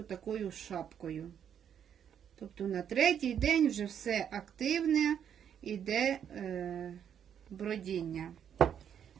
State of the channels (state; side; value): quieter; left; 8.7 dB